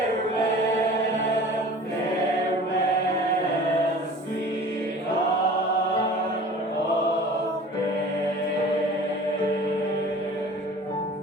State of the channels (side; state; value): both; normal; correlation 0.43